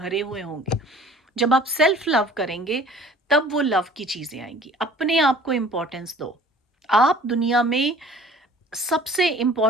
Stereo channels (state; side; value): normal; both; correlation 0.49